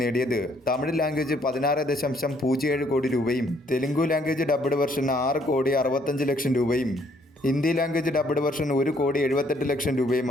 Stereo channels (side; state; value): both; normal; correlation 0.66